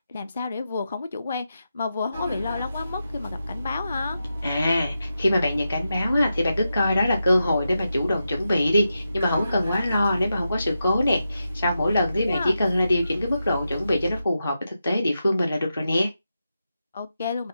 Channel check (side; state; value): both; inverted; correlation -0.88